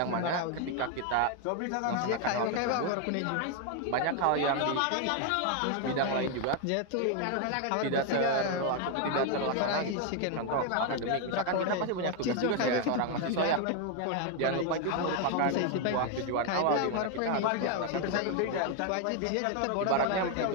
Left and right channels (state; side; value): different; both; correlation 0.01